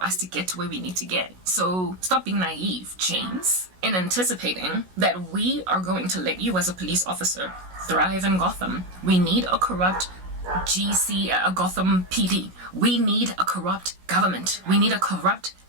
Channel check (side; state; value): left; late; 16 ms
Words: us to get to where we need to get. So stop being naive, James, in anticipating that we are going to let you as a police officer thrive in Gotham. We need a corrupt a Gotham PD. We need a corrupt government. We need a corrupt